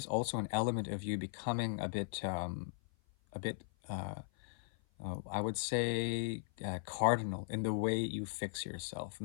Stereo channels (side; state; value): right; silent; 52 dB below the other